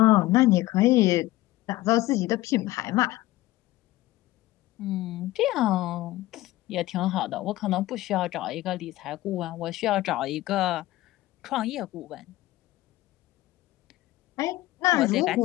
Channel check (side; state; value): right; quieter; 17.2 dB